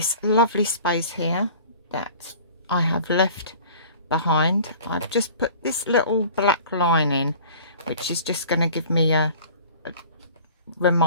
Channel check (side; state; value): both; inverted; correlation -0.45